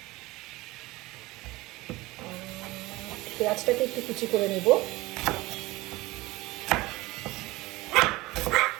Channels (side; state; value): left; quieter; 20.2 dB